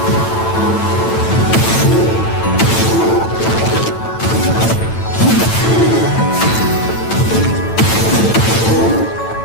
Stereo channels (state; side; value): late; right; 9.0 ms